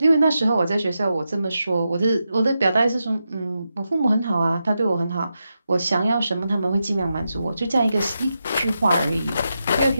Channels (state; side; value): inverted; both; correlation -0.88